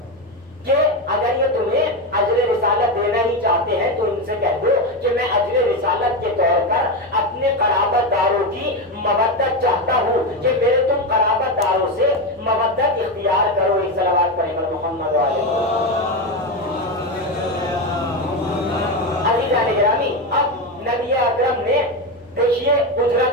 کہ اگر یہ تمہیں اجر رسالت دینا ہی چاہتے ہیں تو ان سے کہہ دو کہ میں اجر رسالت کے طور پر اپنے قرابت داروں کی مودت چاہتا ہوں، کہ میرے تم قرابت داروں سے مودت اختیار کرو۔ ایک صلوات پڑھیں محمد علیہ۔ عزیزان گرامی اب نبی اکرم نے دیکھیے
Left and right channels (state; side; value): normal; both; correlation 0.14